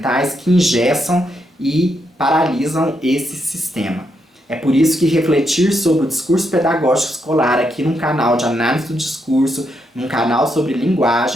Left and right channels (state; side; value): normal; both; correlation 0.80